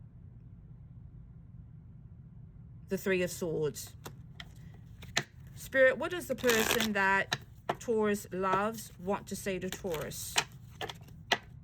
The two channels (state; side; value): identical; both; correlation 1.00